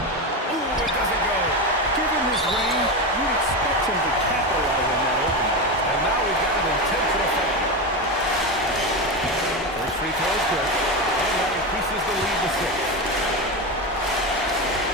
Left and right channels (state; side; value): normal; both; correlation 0.17